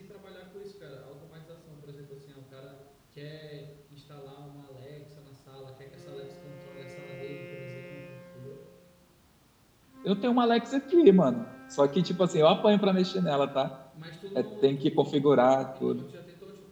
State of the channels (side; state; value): both; identical; correlation 1.00